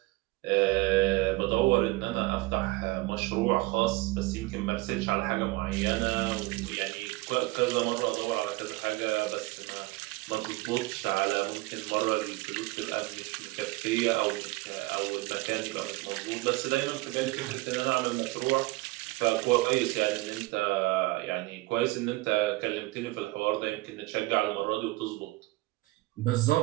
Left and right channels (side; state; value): left; quieter; 20.9 dB